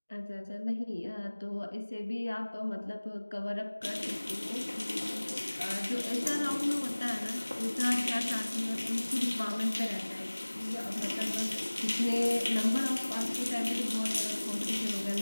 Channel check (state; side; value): inverted; both; correlation -1.00